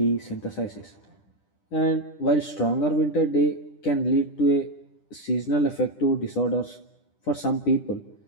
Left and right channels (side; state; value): right; late; 10 ms